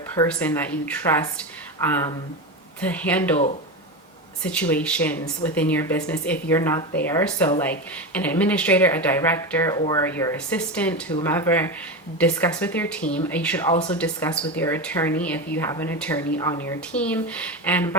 that you trust to handle situations within your business if you're not there. So like an administrator, a director, or your assistant, whomever, discuss with your team. You should also discuss with your attorney if you have an attorney on your team. And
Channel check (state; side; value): normal; both; correlation 0.19